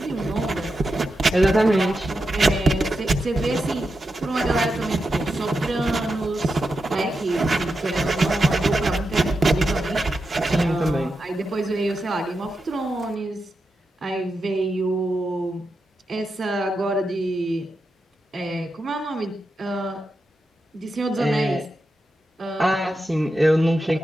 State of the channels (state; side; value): normal; both; correlation 0.88